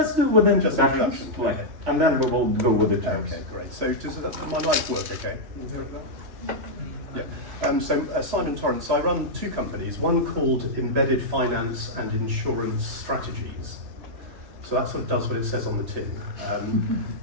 do with introduction. Okay. And then we will go with the terms. Okay, great. So does my mic work okay? Can you hear it there? Yeah. So Simon Torrance, I run two companies, one called Embedded Finance and Insurance Strategies. So that sort of does what it says on the tin.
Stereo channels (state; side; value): late; left; 3.2 ms